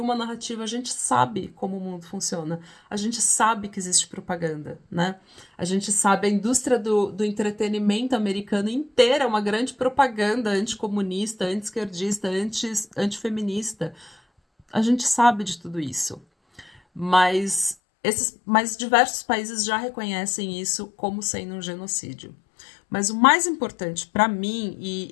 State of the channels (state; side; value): drops out; right; at 17.8 s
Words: uma narrativa. A gente sabe como o mundo funciona. A gente sabe que existe propaganda, né? A gente sabe a indústria do entretenimento americano inteira é uma grande propaganda anticomunista, anti-esquerdista, antifeminista. A gente sabe de tudo isso. Mas diversos países já reconhecem isso como sendo um genocídio. Mas o mais importante para mim,